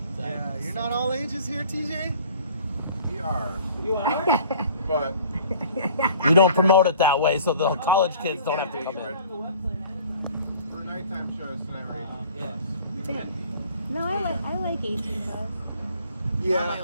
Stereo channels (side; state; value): both; inverted; correlation -0.50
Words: So Yeah, I'm you're so- not all ages here, TJ? We are. You are? But You don't promote it that way, so the college kids don't have to come in. for nighttime shows tonight, Yeah. No, I like 18 plus. My Yeah.